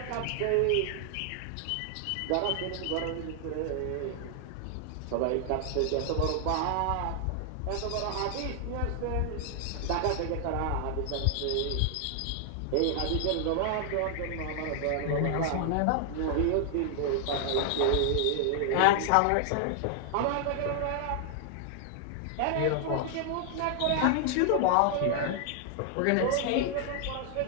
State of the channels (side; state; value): both; different; correlation 0.00